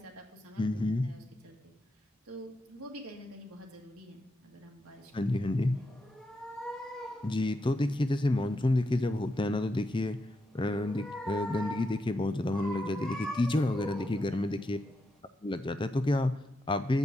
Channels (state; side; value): normal; both; correlation 0.84